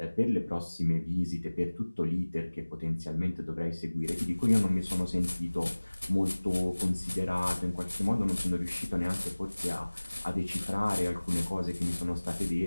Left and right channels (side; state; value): both; inverted; correlation -1.00